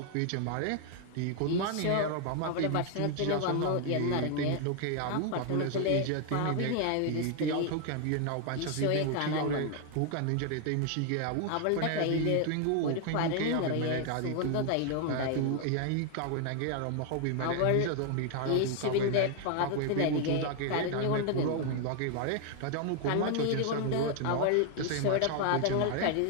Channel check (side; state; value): both; different; correlation 0.00